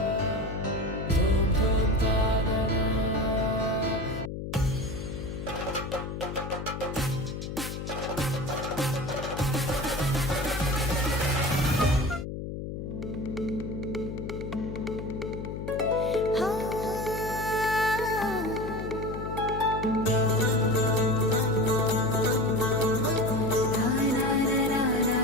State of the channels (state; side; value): noise; left; hum, 6 dB below the sound